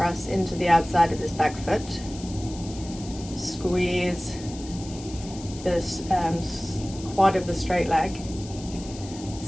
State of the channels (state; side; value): noise; left; hiss, 16 dB below the sound